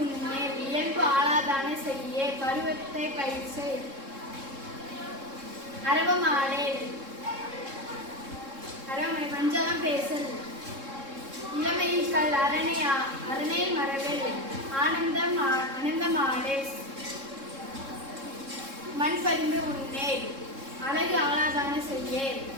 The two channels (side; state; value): left; late; 3.7 ms